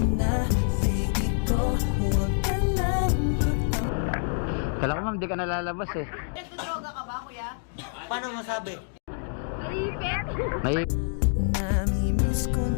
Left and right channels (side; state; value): right; silent; 60 dB below the other